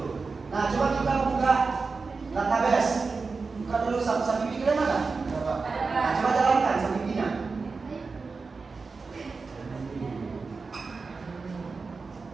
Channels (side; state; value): left; quieter; 4.4 dB